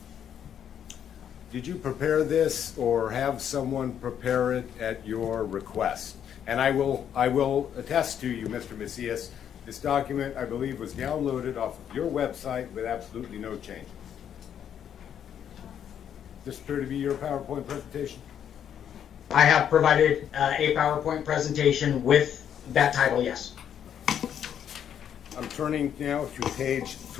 prepare this or have someone prepare it at your request? And I will attest to you, Mr. Macias, this document, I believe, was downloaded off of your website with absolutely no changes. Does this appear to be your PowerPoint presentation? I have provided a PowerPoint presentation with that title, yes. I'm turning now to page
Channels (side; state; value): right; quieter; 9.1 dB